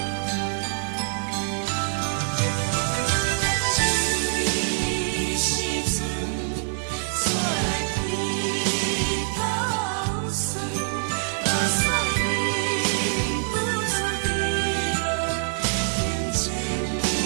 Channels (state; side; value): silent; left; 56 dB below the other